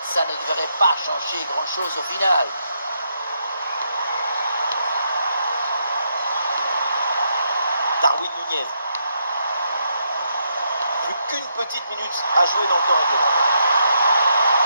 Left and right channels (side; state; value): both; inverted; correlation -0.78